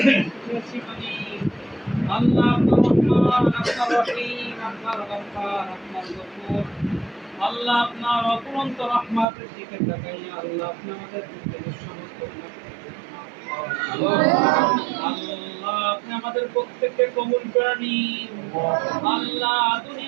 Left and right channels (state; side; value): drops out; left; at 9.2 s